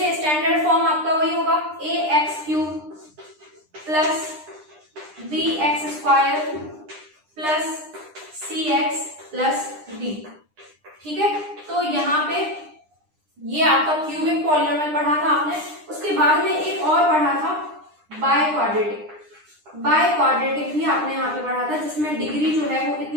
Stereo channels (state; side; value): late; left; 9.9 ms